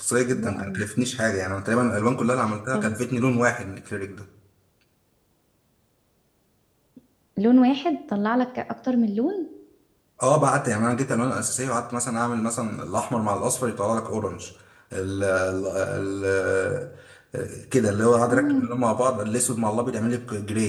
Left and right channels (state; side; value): identical; both; correlation 1.00